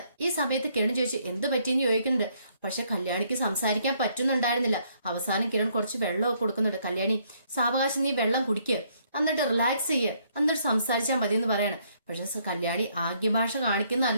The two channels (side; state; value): both; inverted; correlation -0.69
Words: ഈ സമയത്ത് കിരൺ ചോദിച്ചു എന്ത് പറ്റിയെന്ന് ചോദിക്കുന്നുണ്ട്. പക്ഷെ കല്യാണിക്ക് സംസാരിക്കാൻ പറ്റുന്നുണ്ടായിരുന്നില്ല. അവസാനം കിരൺ കുറച്ച് വെള്ളമൊക്കെ കൊടുക്കുന്നുണ്ട്. കല്യാണി സാവകാശം നീ വെള്ളം കുടിക്കുക, എന്നിട്ട് റിലാക്സ് ചെയ്യുക, എന്നിട്ട് സംസാരിച്ചാൽ മതി എന്ന് പറയാണ്. പക്ഷെ കല്യാണി ആംഗ്യഭാഷ